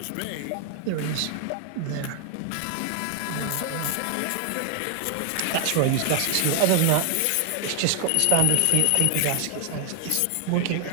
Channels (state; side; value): different; both; correlation 0.00